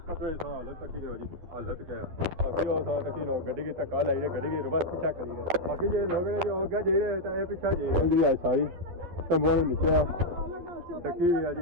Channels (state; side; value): late; left; 12 ms